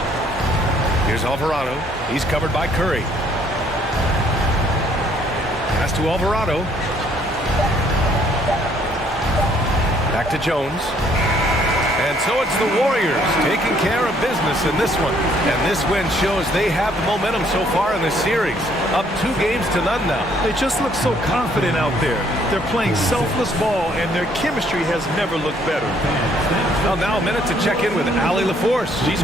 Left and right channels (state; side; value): normal; both; correlation 0.64